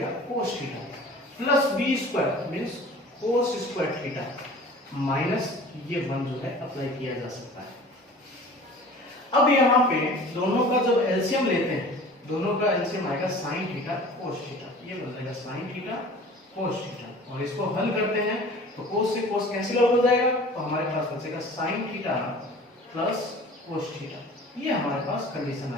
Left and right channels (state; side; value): normal; both; correlation 0.44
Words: cos theta, plus B square means cos square theta minus ये 1 जो है अप्लाई किया जा सकता है। अब यहाँ पे दोनों का जब एलसीएम लेते हैं, दोनों का एलसीएम आएगा साइन थीटा कोस थीटा, ये बन जाएगा साइन थीटा कोस थीटा, और इसको हल करते हैं तो कोस से कोस कैंसिल आउट हो जाएगा, तो हमारे पास बचेगा sign theta plus cos theta, ये हमारे पास कंडीशन